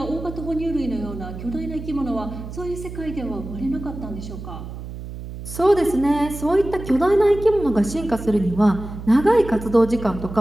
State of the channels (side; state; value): right; noise; hum, 10 dB below the sound